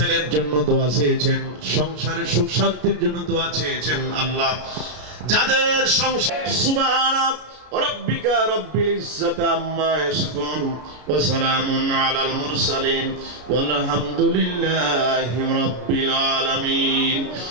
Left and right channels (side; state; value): left; late; 33 ms